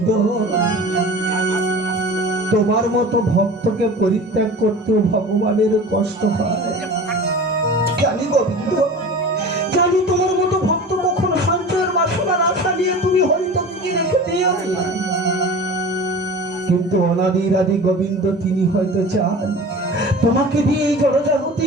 তোমার মতো ভক্তকে পরিত্যাগ করতেও ভগবানের কষ্ট হয়। জানি গোবিন্দ, জানি তোমার মতো ভক্ত কখনো সঞ্চয়ের বাসনার আশা নিয়ে তুমি হরিতকে রেখে দিও। কিন্তু অনাদির আদি গোবিন্দ তিনি হয়তো চান তোমাকে দিয়ে এই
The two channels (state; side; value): normal; both; correlation 0.37